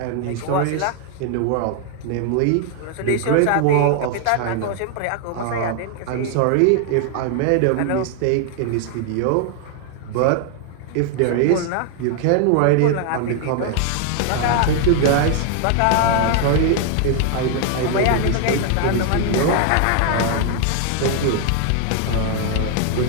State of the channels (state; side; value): different; both; correlation 0.00